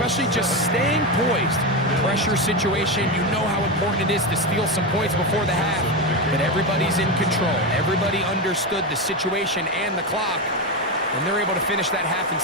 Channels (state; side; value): normal; both; correlation 0.14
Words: just staying poised. Pressure situation, you know how important it is to steal some points before the half, but everybody's in control. Everybody understood the situation and the clock, and they're able to finish that half in